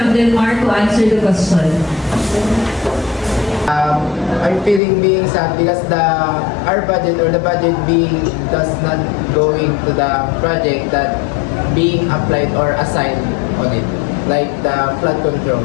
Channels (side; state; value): right; drops out; at 4.8 s